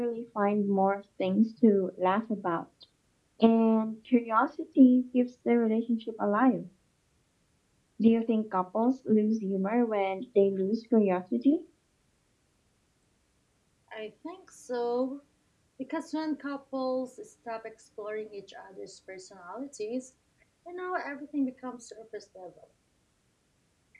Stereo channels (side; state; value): both; identical; correlation 1.00